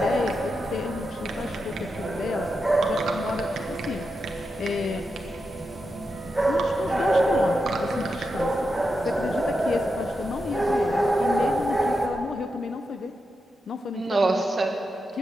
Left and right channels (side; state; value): both; normal; correlation 0.87